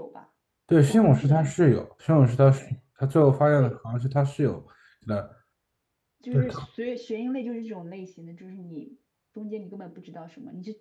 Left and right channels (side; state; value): both; identical; correlation 1.00